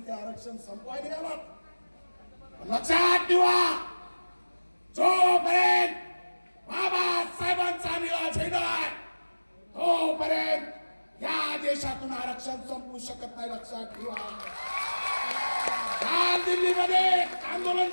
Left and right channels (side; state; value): both; inverted; correlation -1.00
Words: ते आरक्षण संपवायला गेलात. लक्षात ठेवा, जोपर्यंत बाबासाहेबांचा निळा झेंडा आहे तोपर्यंत या देशातून आरक्षण संपवू शकत नाही. लक्षात ठेवा. काल दिल्लीमध्ये आंदोलन